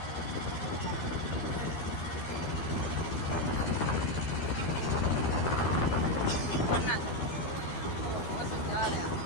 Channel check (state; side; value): late; right; 13 ms